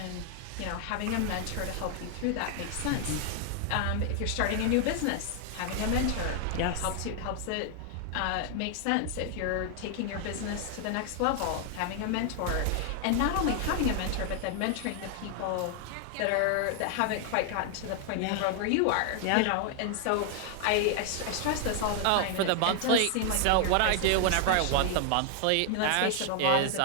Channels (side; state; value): both; different; correlation 0.00